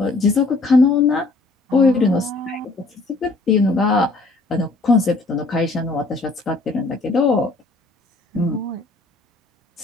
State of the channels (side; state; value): right; quieter; 3.3 dB